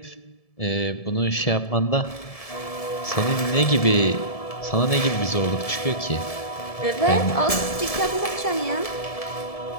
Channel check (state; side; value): late; right; 1.7 ms